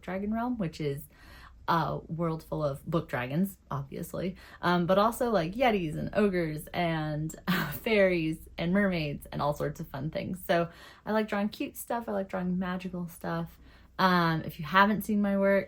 Dragon realm, which is a world full of book dragons, obviously, but also like yetis and ogres and fairies and mermaids and all sorts of fun things. So I like drawing cute stuff. I like drawing magical stuff. If you haven't seen my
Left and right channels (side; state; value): both; identical; correlation 1.00